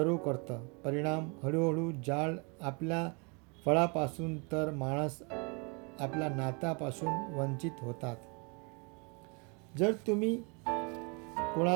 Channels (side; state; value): left; quieter; 32.9 dB